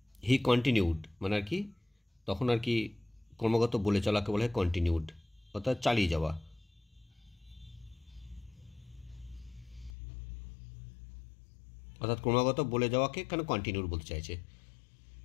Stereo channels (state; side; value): drops out; right; at 9.9 s